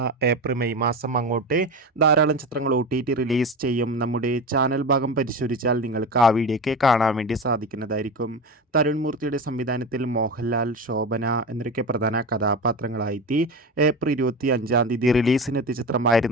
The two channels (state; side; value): normal; both; correlation 0.24